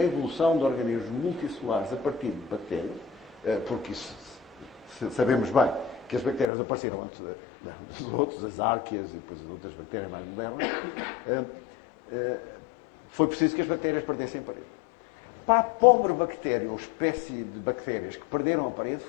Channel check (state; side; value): drops out; right; at 6.5 s